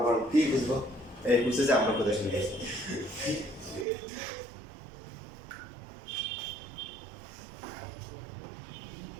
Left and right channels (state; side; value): drops out; left; at 3.9 s